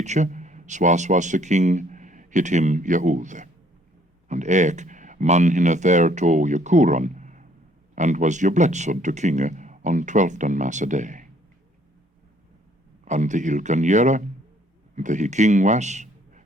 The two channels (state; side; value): normal; both; correlation 0.62